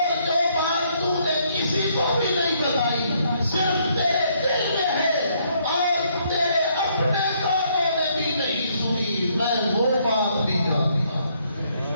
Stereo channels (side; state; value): both; inverted; correlation -0.69